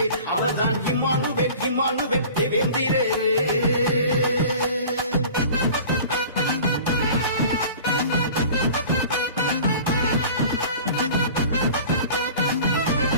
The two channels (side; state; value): both; inverted; correlation -0.42